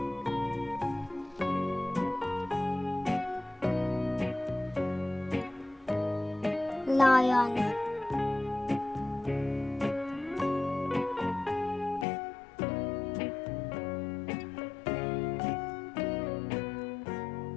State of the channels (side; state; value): right; drops out; at 12.1 s